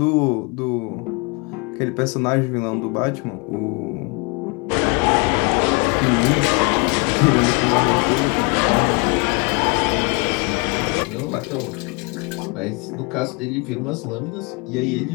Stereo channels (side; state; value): right; quieter; 31.4 dB